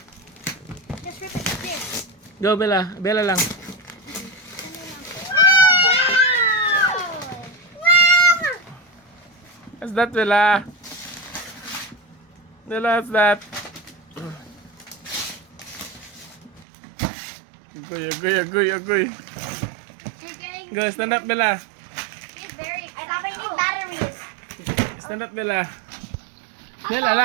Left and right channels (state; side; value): drops out; left; at 16.7 s